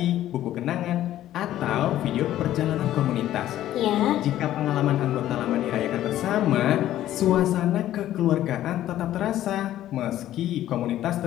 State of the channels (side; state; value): right; quieter; 13.0 dB